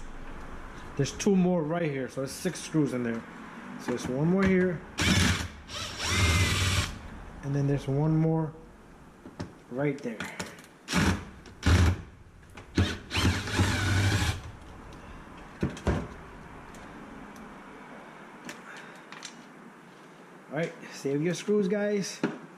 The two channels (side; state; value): both; identical; correlation 1.00